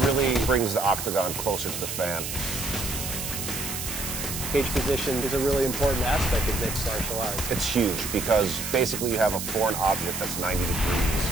brings the octagon closer to the fan. Cage position is a really important aspect of mixed martial arts. It's huge because basically you have a foreign object that's 90 degrees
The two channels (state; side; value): noise; right; hiss, 5 dB below the sound